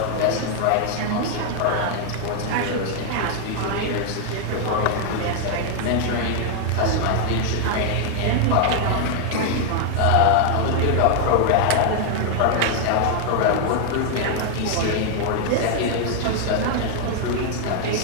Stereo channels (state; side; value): different; both; correlation 0.00